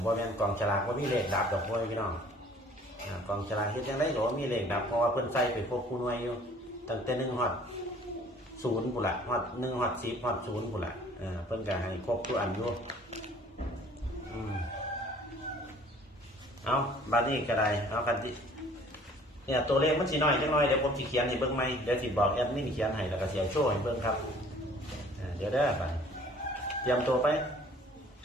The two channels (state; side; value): normal; both; correlation 0.53